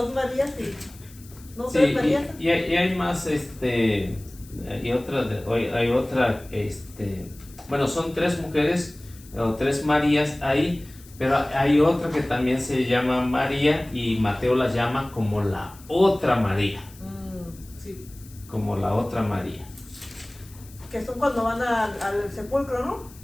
Marías y no 3 Sí, Marías. y hay más, hay otra, bueno, son 3 mujeres o 3 Marías ahí, pero hay otra que también se llama María y Mateo la llama como la otra María, Sí. como la otra María. que son cuando van al sepulcro, ¿no?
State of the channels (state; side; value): noise; left; hiss, 22 dB below the sound